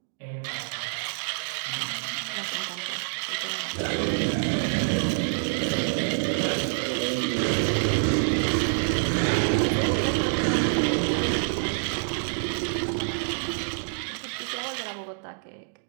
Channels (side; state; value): left; silent; digital silence